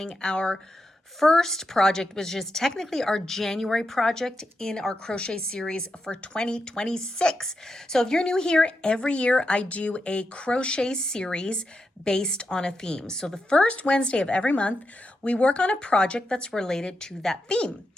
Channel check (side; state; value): both; normal; correlation 0.86